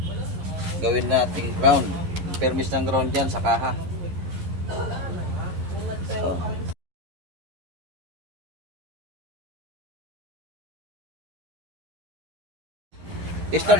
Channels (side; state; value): left; late; 11 ms